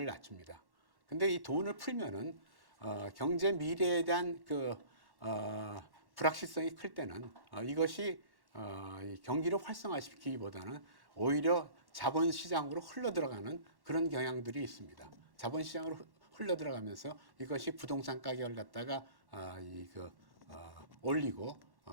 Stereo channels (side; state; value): left; late; 1.1 ms